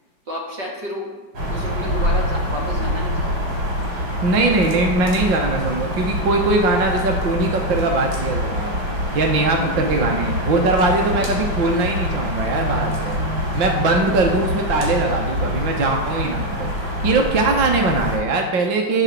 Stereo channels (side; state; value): left; late; 5.7 ms